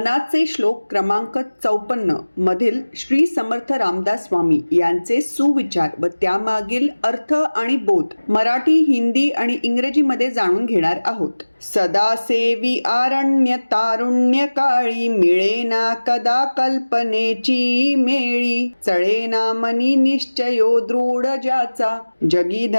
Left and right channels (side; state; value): both; inverted; correlation -1.00